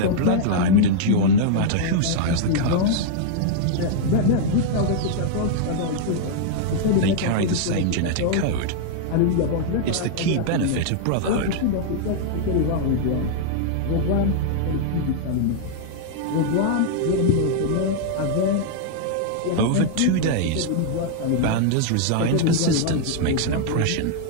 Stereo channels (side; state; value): both; different; correlation -0.01